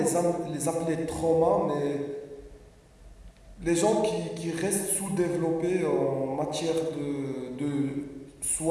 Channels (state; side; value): identical; both; correlation 1.00